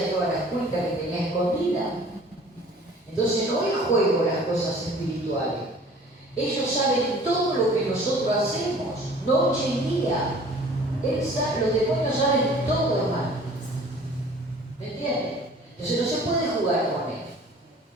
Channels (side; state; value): both; normal; correlation 0.49